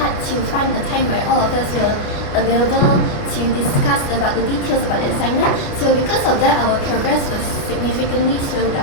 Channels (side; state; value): right; late; 29 ms